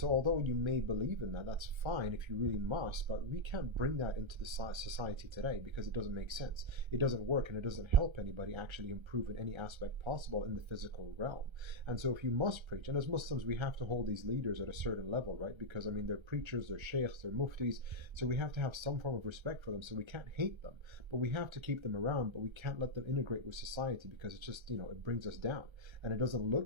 although you may believe in that, that's fine if you really must, but we can't bring that into the society today because it doesn't make sense. It doesn't work and it doesn't help anybody actually improve in any aspect possible in the physical realm. And so if you must preach, and as Muslims we have to hold these leaders at a certain level, right? Because I mean they're preachers, they're sheikhs, they're muftis, so we have to have some form of respect for them. So we can't hate them, but we have to keep them around, but we can't let them integrate with society because it's just, it brings us down and it doesn't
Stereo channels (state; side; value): late; left; 1.3 ms